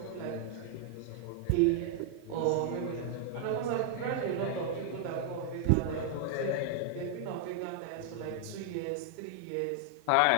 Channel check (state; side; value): different; both; correlation 0.00